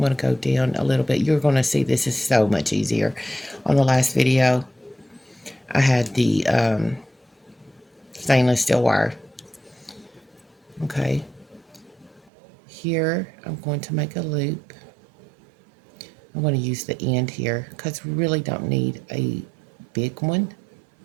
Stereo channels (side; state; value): left; drops out; at 12.3 s